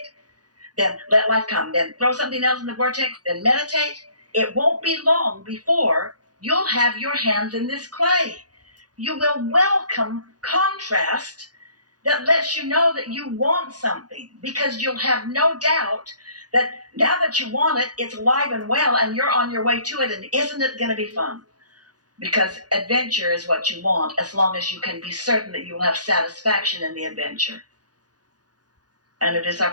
then let life come. Then throw something else in the vortex, then meditate. It won't be long before you'll have your hands in this clay. You will welcome contrast that lets you know that you want something, because you'll have no doubt that now that you want it, it's alive and well, and you're on your way to it. And isn't it going to be fun? Because adventure is what you want, as long as you can be certain that you will have satisfaction in the adventure. And it is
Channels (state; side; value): late; left; 0.69 ms